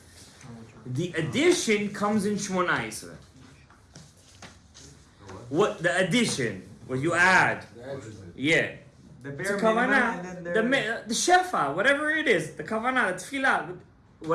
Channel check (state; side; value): identical; both; correlation 1.00